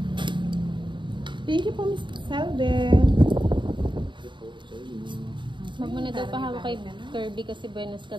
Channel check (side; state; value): left; late; 0.23 ms